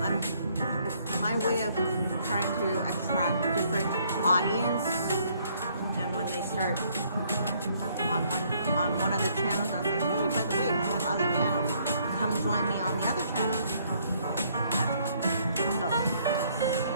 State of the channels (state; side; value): inverted; both; correlation -0.66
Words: my way of trying to attract different audience. And when they start on one of the channels, I'll say, hey, by the way, I have other channels. Come join me on the other channel. That's why. So